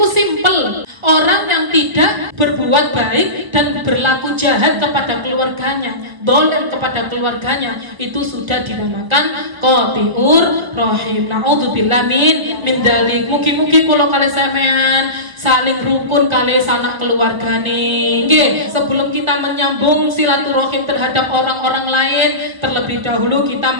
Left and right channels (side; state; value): left; late; 1.4 ms